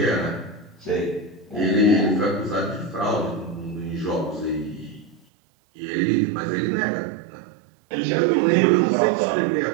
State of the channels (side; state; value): left; drops out; at 5.2 s